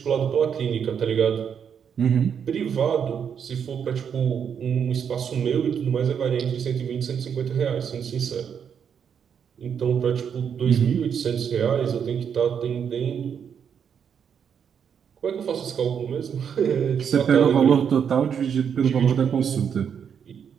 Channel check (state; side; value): quieter; left; 7.6 dB